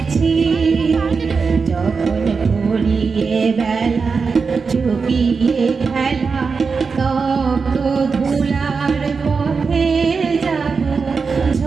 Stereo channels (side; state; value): left; quieter; 5.0 dB